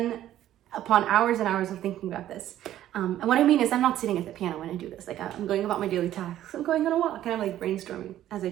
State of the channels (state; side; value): quieter; left; 12.6 dB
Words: upon hours and hours of thinking about this, and what I mean is I'm not sitting at the piano when I do this. Like I'm going about my daily tasks. I'm going on a walk and I'm like brainstorming as I